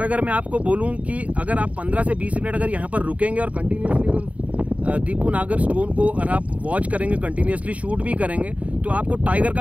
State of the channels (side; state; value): left; late; 0.068 ms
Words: अगर मैं आपको बोलूं कि अगर आप 15 से 20 मिनट अगर यहाँ पर रुकेंगे और कंटिन्यूसली अगर दीपू नागर स्टोन को अगर आप वॉच करेंगे, कंटिन्यूसली शूट भी करेंगे, तो आपको टाइगर